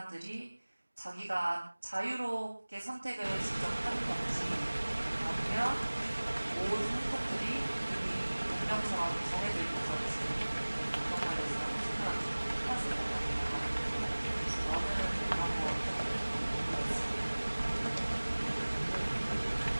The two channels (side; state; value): both; inverted; correlation -1.00